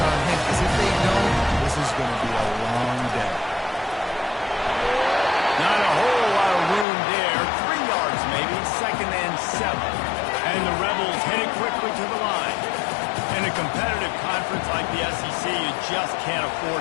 on him, because if they don't, this is going to be a long day. Not a whole lot of room there. 3 yards maybe, 2nd and 7. And the Rebels headed quickly to the line. In a competitive conference like the SEC, you just can't afford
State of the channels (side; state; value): right; drops out; at 6.9 s